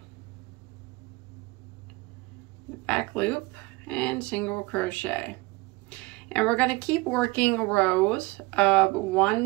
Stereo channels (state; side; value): quieter; left; 23.2 dB